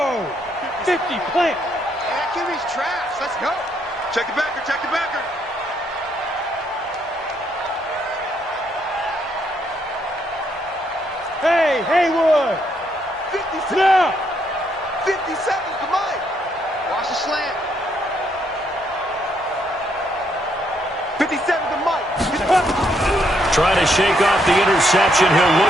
50, plant. Kimmy's trash. Let's go. Check the backer. Hey, Haywood. 57. Now. 57 to Mike. Watch the slant. 57 to Mike. Trying to shake off the interception. He'll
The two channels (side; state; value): both; normal; correlation 0.73